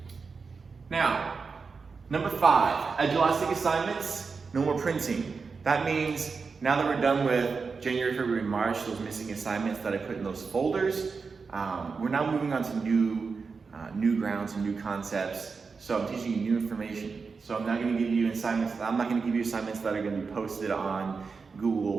Now, number 5, Edulastic assignments, no more printing. That means now that we're done with January, February, and March, those missing assignments that I put in those folders, we're now moving on to new grounds and new concepts. So I'm teaching you new information. So I'm not going to give you assignments. I'm not going to give you assignments that are going to be posted on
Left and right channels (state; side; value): quieter; left; 4.9 dB